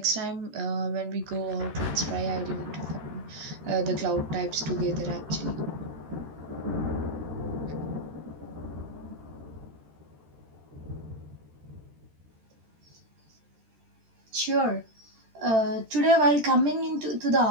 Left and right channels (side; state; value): left; late; 13 ms